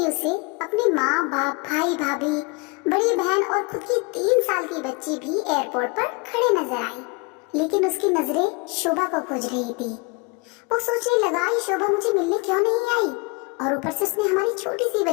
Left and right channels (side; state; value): right; quieter; 29.5 dB